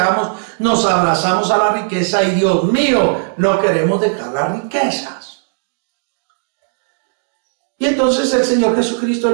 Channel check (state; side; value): silent; left; digital silence